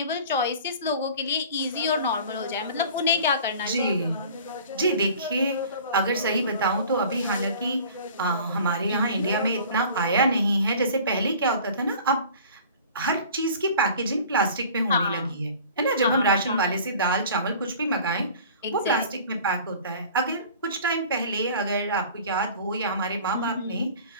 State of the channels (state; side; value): inverted; both; correlation -0.45